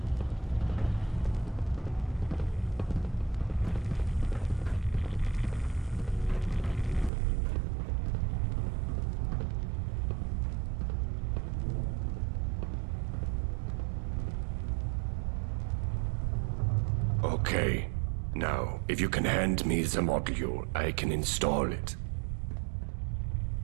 Okay. Now, if you can hand me the module, I can install it.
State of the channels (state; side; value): drops out; left; at 7.1 s